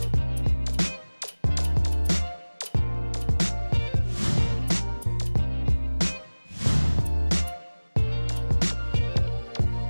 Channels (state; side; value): inverted; both; correlation -1.00